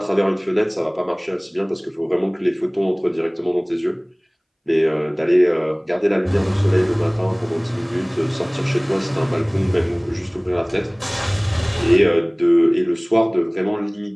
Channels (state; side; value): identical; both; correlation 1.00